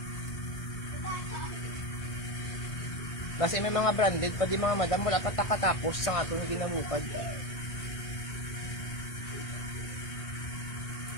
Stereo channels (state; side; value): late; right; 1.6 ms